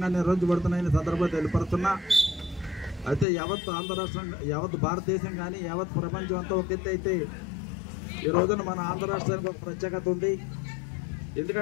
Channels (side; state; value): right; drops out; at 3.2 s